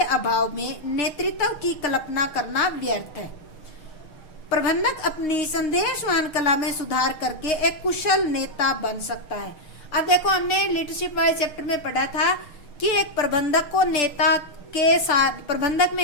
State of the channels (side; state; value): right; late; 6.4 ms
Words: अभाव में नेतृत्व की कल्पना करना व्यर्थ है। प्रबंधक अपनी संदेशवाहन कला में सुधार करके एक कुशल नेता बन सकता है। अब देखो हमने लीडरशिप वाले चैप्टर में पढ़ा था कि एक प्रबंधक को प्रबंधक